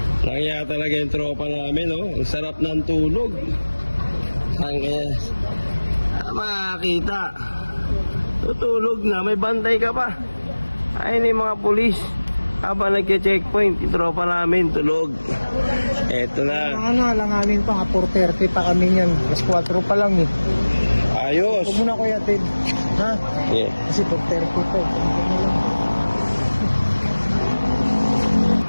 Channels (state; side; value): inverted; both; correlation -1.00